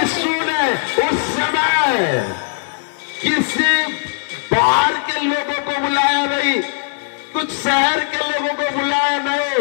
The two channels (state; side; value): silent; right; digital silence